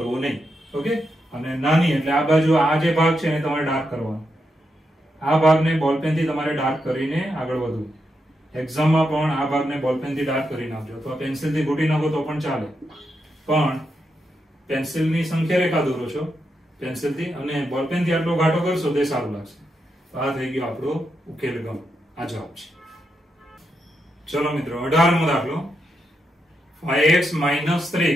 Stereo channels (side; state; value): both; normal; correlation 0.84